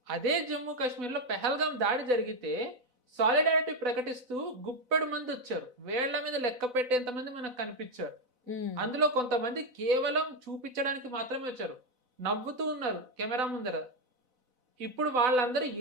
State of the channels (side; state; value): left; late; 4.0 ms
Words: అదే జమ్మూ కాశ్మీర్ లో పెహల్గాం దాడి జరిగితే సాలిడారిటీ ప్రకటిస్తూ గుప్పెడు మంది వచ్చారు, వేళ్ల మీద లెక్క పెట్టేంత మంది మనకు కనిపించారు. అందులో కొంతమంది కేవలం చూపించడానికి మాత్రమే వచ్చారు, నవ్వుతూ ఉన్నారు కెమెరా ముందర. ఇప్పుడు వాళ్ళందరూ